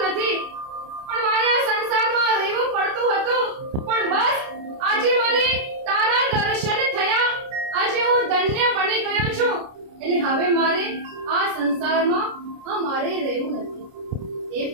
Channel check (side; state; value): left; late; 29 ms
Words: નથી, પણ મારે આ સંસારમાં રહેવું પડતું હતું. પણ બસ આજે મને તારા દર્શન થયા. આજે હું ધન્ય બની ગયો છું. એટલે હવે મારે આ સંસારમાં મારે રહેવું નથી. હે